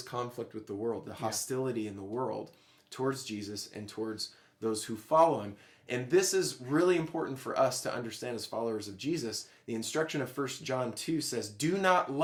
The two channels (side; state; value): both; identical; correlation 1.00